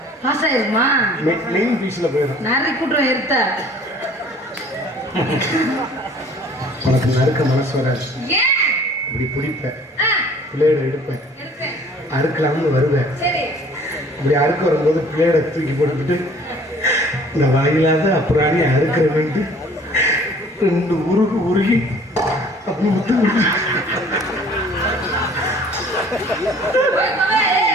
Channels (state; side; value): normal; both; correlation 0.53